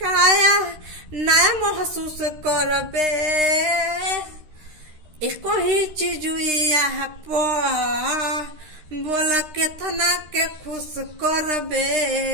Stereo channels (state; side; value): late; left; 13 ms